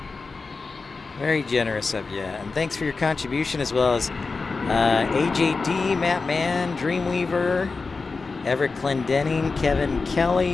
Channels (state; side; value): quieter; right; 4.2 dB